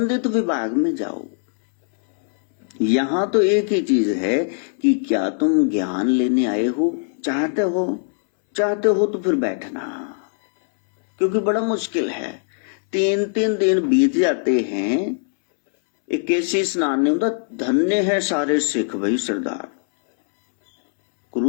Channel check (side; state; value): right; silent; 65 dB below the other